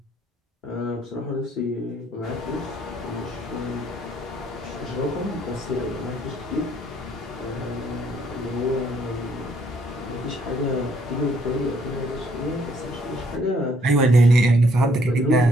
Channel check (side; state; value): both; normal; correlation 0.66